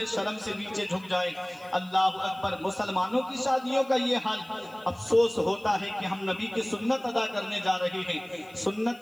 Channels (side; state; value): left; noise; hiss, 26 dB below the sound